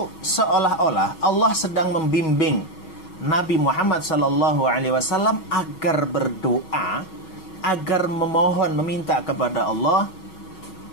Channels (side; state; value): right; late; 6.3 ms